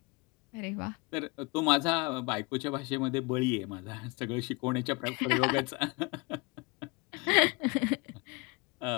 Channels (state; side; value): quieter; right; 27.8 dB